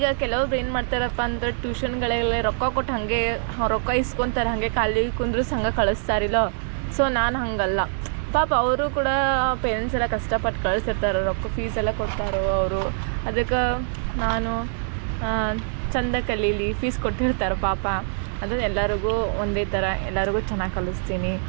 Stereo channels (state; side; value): silent; left; digital silence